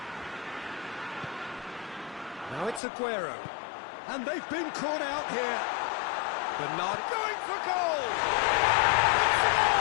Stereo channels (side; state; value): right; drops out; at 2.8 s